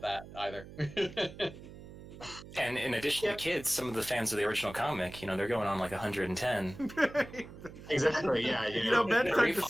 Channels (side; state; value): right; noise; hum, 15 dB below the sound